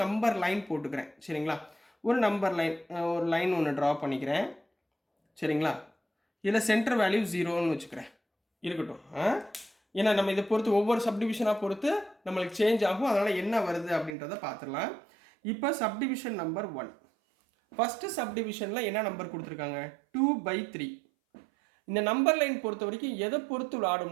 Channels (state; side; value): drops out; left; at 14.2 s